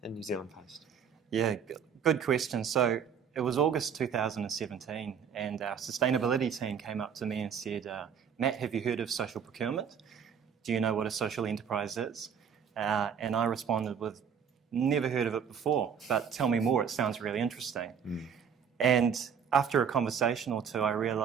in New Zealand Post? Yeah, good question. So it was August 2017 and our sustainability team came up to me and said, Matt, have you heard of social procurement? Do you know what a social enterprise is? And I responded with, never heard of it before, but tell me more, it sounds really interesting. And after a conversation or two, I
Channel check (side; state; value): left; quieter; 7.2 dB